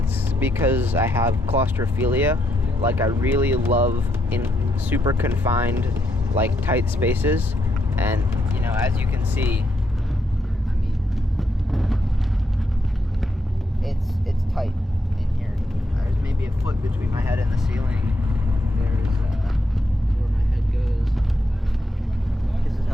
because I have claustrophilia. Like, I really love in super confined, like, tight spaces. And, you know, as you can see, I mean, it's tight in here. There's maybe a foot between my head and the ceiling. There's where my head goes. This is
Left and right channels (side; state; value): both; normal; correlation 0.79